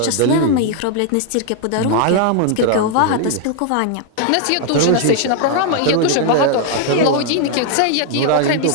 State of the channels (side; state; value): both; different; correlation 0.00